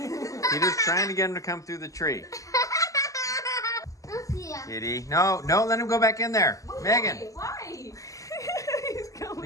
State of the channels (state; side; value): late; right; 0.16 ms